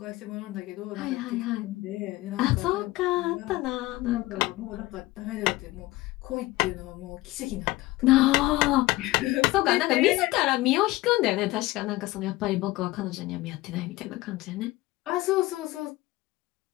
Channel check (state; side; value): quieter; right; 19.1 dB